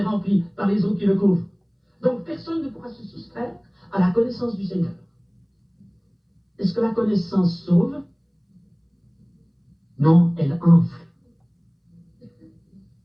rempli par les eaux qui le couvrent. Donc personne ne pourra se soustraire à la connaissance du Seigneur. Est-ce que la connaissance sauve? Non, elle enfle.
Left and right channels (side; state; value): both; identical; correlation 1.00